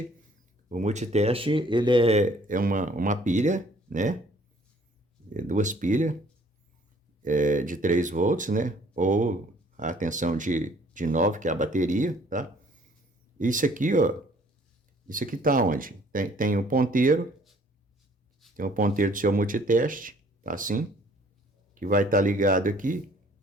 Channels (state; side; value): normal; both; correlation 0.58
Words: ele é uma pilha, né? 2 pilhas de 3 volts, né? Ou a tensão de 9, que é a bateria, tá? Isso aqui, ó, isso aqui tá onde? Tem o ponteiro, do seu multiteste, tá assim, que vai estar ligado aqui,